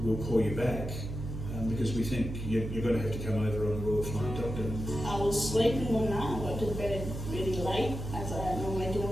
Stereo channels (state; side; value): noise; right; hum, 6 dB below the sound